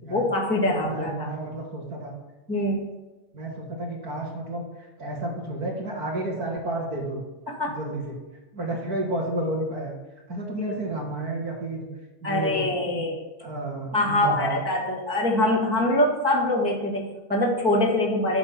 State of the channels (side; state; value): left; late; 4.5 ms